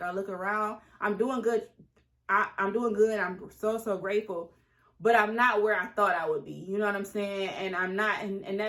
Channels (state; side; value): identical; both; correlation 1.00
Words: I look around, I'm doing good, I'm doing good, I'm so grateful, but I'm not where I thought I would be, you know what I'm saying? And I'm not, and